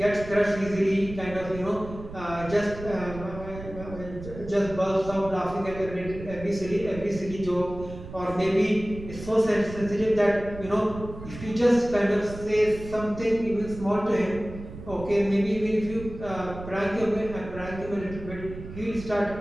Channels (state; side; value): noise; right; rumble, 12 dB below the sound